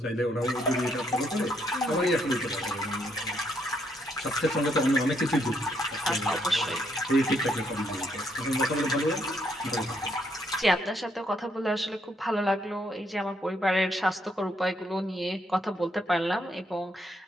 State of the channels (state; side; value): normal; both; correlation 0.73